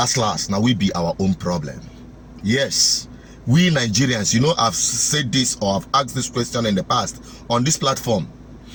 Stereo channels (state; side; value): identical; both; correlation 1.00